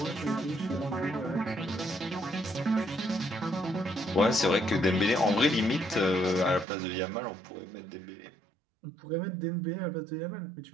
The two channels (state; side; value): drops out; left; at 6.7 s